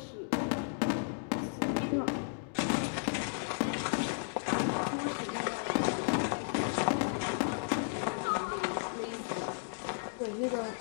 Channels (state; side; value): silent; right; digital silence